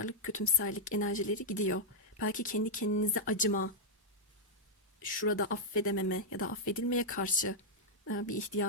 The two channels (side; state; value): both; normal; correlation -0.05